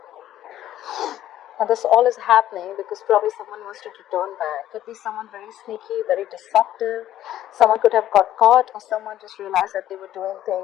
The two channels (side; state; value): right; quieter; 12.6 dB